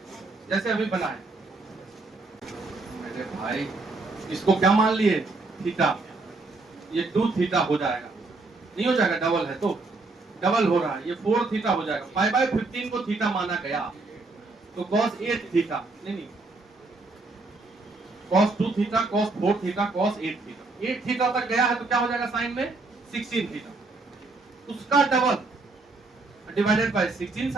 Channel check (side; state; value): left; quieter; 3.5 dB